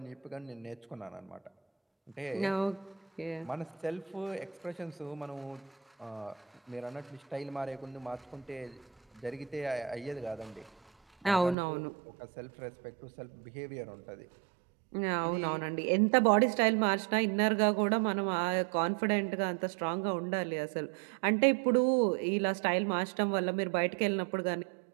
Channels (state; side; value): drops out; left; at 11.6 s